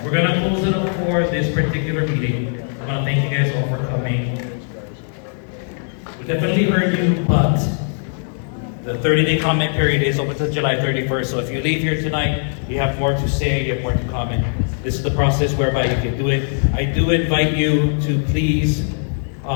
we're gonna close it up for this particular meeting. I wanna thank you guys all for coming. We definitely heard you, but the 30-day comment period is open until July 31st. So if you leave here tonight, you have more to say, you have more to comment. This is the process whereby you can do it. I do invite you to please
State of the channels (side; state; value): right; silent; 62 dB below the other